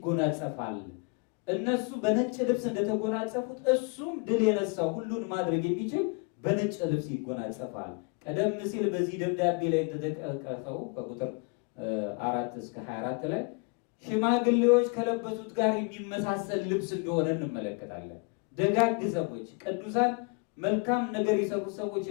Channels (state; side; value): quieter; right; 32.3 dB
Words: እነሱ በነጭ ልብስ እንደተጎናጸፉት እሱም ድል የነሳው ሁሉን ማድረግ የሚችል በነጭ ልብስ ይጎናጸፋል። ቀደም ሲል በዚህ ደብዳቤ ላይ ተጠቀሰው ከቁጥር 4 እስከ 24 ላይ ሽማግሌዎች ከለበሱት ጋር የሚመሳሰል ልብስ እንደሆነ እንመለከታለን። ደጋግ ሰዎች፣ ቅዱሳን፣ መልካም ነገር የሰሩ ሰዎች